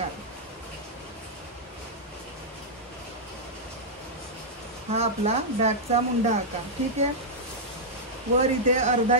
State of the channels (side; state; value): both; normal; correlation -0.07